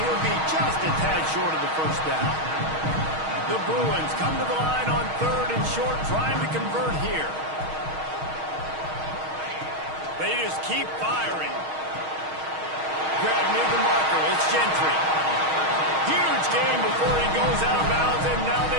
be just a tad short of the first down. The Bruins come to the line on 3rd and short, trying to convert here. They just keep firing. Grab near the marker. It's Gentry. Huge game before he goes out of bounds, and now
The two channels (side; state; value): left; late; 6.4 ms